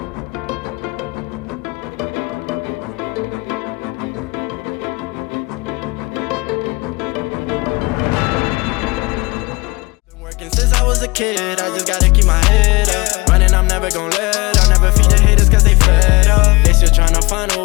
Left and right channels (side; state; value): right; quieter; 24.8 dB